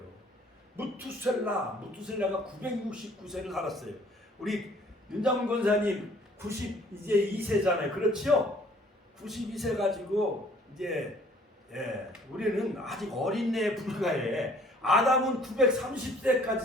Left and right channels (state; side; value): normal; both; correlation 0.57